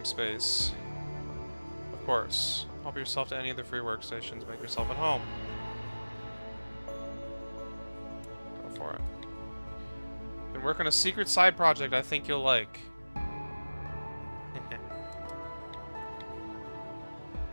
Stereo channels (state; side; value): inverted; both; correlation -1.00